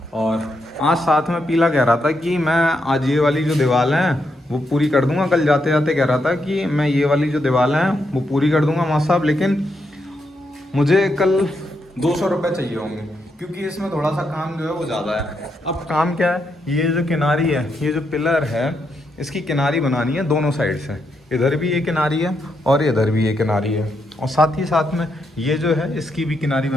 और आज साथ में पीला कह रहा था कि मैं आज ये वाली जो दीवार है वो पूरी कर दूंगा। कल जाते जाते कह रहा था कि मैं ये वाली जो दीवार है वो पूरी कर दूंगा माँ साहब, लेकिन मुझे कल 200 रुपये चाहिए होंगे क्योंकि इसमें थोड़ा सा काम जो है वो ज़्यादा है। अब काम क्या है, ये जो किनारी है, ये जो पिलर है, इसकी किनारी बनानी है दोनों साइड से। इधर भी ये किनारी है और इधर भी ये किनारी है। और साथ ही साथ में ये जो है इसकी भी किनारी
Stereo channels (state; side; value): normal; both; correlation 0.81